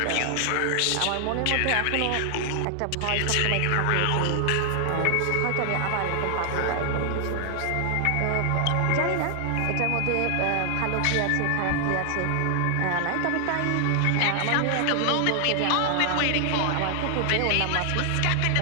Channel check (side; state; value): both; different; correlation 0.00